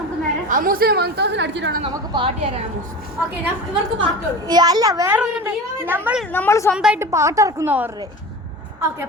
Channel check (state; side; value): normal; both; correlation 0.32